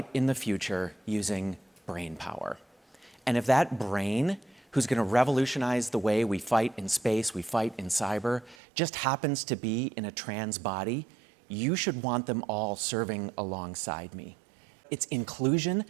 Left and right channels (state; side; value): drops out; left; at 8.6 s